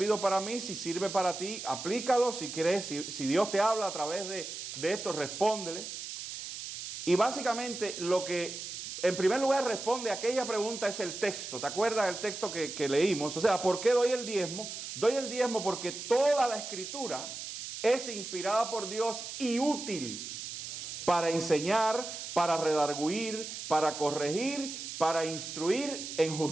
para mí. Si sirve para ti, aplícalo. Si crees, si Dios te habla a través de esto, respóndele. Y básicamente lo que en primer lugar responde a aquella pregunta es el texto. ¿Te acuerdas del texto que leímos? O sea, ¿por qué doy el diezmo? Doy el diezmo porque toda la Escritura es inspirada por Dios y útil para enseñar, para redarguir, para corregir, para instruir en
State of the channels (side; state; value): right; noise; hiss, 8 dB below the sound